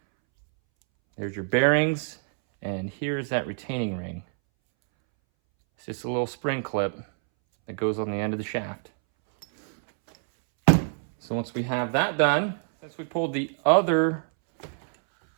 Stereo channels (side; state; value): left; silent; 61 dB below the other